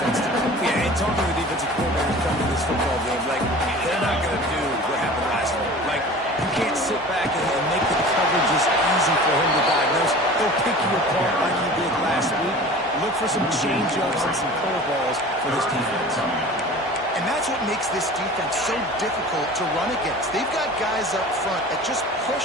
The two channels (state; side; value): normal; both; correlation 0.40